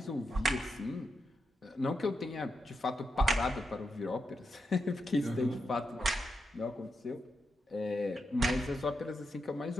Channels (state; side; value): normal; both; correlation 0.85